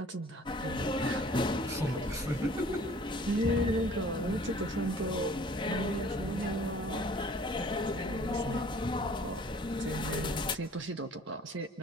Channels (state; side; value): normal; both; correlation 0.53